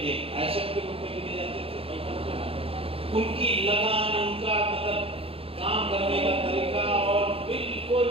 एसेट के रूप में लिए जाते थे, उनकी लगान, उनका मतलब काम करने का तरीका और बिल्कुल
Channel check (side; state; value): left; late; 0.27 ms